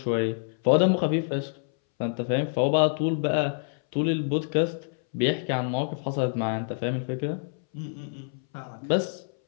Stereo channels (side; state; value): right; silent; 60 dB below the other